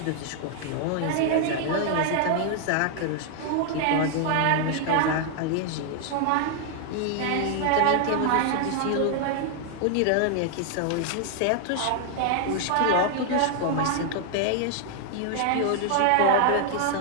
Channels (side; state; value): both; different; correlation 0.00